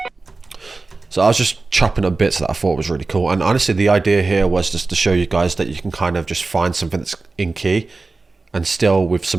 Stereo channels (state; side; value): quieter; left; 3.6 dB